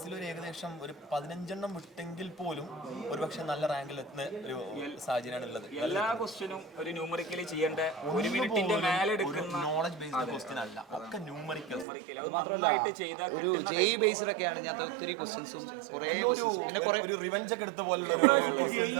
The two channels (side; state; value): left; drops out; at 11.9 s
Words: ഒരു ഏകദേശം ഒരു 15 വിട്ടെങ്കിൽ പോലും ഒരുപക്ഷെ നല്ല റാങ്കിൽ എത്തുന്ന ഒരു സാഹചര്യമാണ് ഉള്ളത്. എല്ലാ ക്വസ്റ്റ്യനും ഒരു ന്യൂമറിക്കലി ചെയ്യേണ്ട ഒരു മിനിറ്റിന്റെ മേലെ എടുക്കുന്ന നോളജ് ബേസ്ഡ് ക്വസ്റ്റ്യൻ അല്ല, ഒക്കെ ന്യൂമറിക്കൽ. അത് നന്നായിട്ട് ചെയ്താൽ ഒരു ജെഇ ബേസ്ഡ് ഒക്കെയാണ് ഞാൻ ഒത്തിരി ക്വസ്റ്റ്യൻസും കുറേ ഒരു റിവെഞ്ച് ഒക്കെ എടുത്ത പോലുള്ള